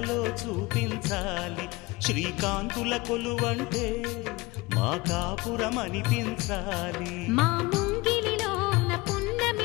చూపించాలి శ్రీకాంతుల కొలువంటే మా కాపురం అనిపించాలి మా ముంగిలిలోన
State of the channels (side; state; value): right; quieter; 22.5 dB